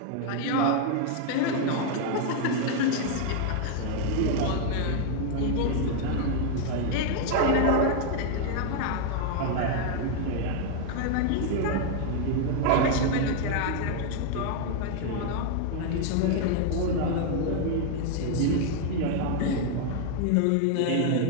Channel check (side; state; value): both; different; correlation 0.00